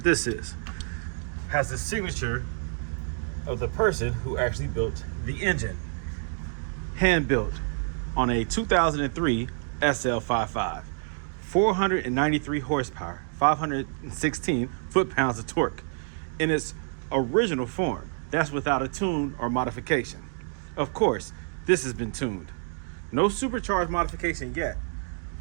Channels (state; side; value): silent; left; digital silence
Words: this is. Has the signature of the person who actually built the engine. Hand-built on a 2003 SL55. 493 horsepower, 516 foot-pounds of torque in its original form. That's without a tune or modification. Of course, this has been tuned. No supercharged modification yet,